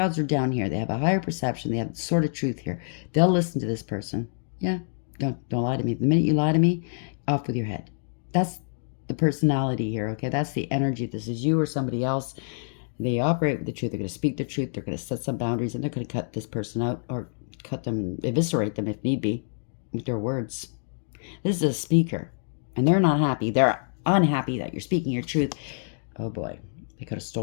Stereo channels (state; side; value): silent; right; digital silence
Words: are down here. They have a higher perception. They have sort of truth here. They'll listen to this person. Yeah, don't lie to me. The minute you lie to me, off with your head. That's the personality here. Okay, that's the energy. This is you or somebody else. They operate with the truth. They're going to speak the truth. They're going to set some boundaries, and they're going to cut this person out or cut them, eviscerate them if need be, with their words. This is a speaker, and they're not happy. They're unhappy that you're speaking your truth. Oh boy, they could have